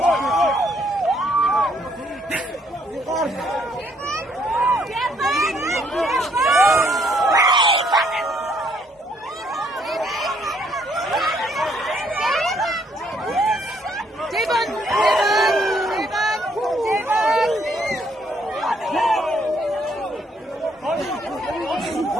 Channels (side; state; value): both; normal; correlation 0.68